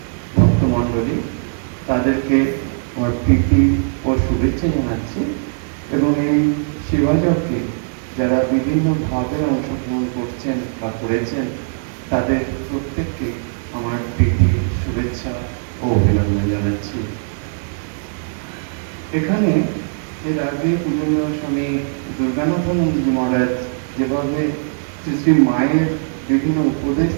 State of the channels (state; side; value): silent; left; digital silence